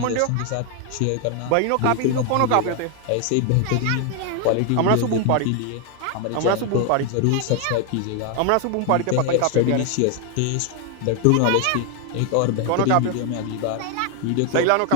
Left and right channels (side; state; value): both; different; correlation 0.01